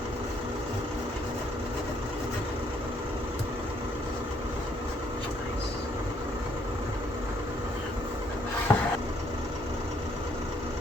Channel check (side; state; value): both; normal; correlation 0.68